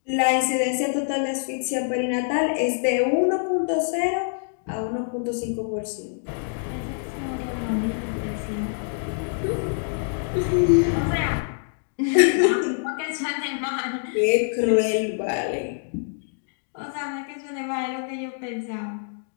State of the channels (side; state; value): right; silent; digital silence